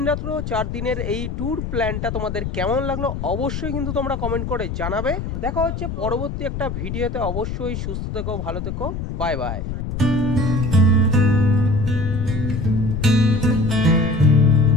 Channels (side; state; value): left; noise; rumble, 5 dB below the sound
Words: রাত্র 4 দিনের এই ট্যুর প্ল্যানটা তোমাদের কেমন লাগলো অবশ্যই কিন্তু তোমরা কমেন্ট করে জানাবে। দেখা হচ্ছে পরবর্তী একটা ভিডিওতে, অবশ্যই সুস্থ থেকো, ভালো থেকো, বাই বাই।